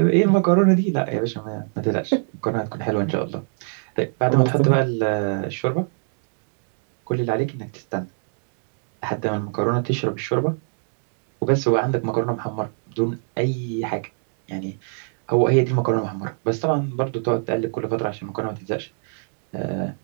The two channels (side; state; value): left; silent; 63 dB below the other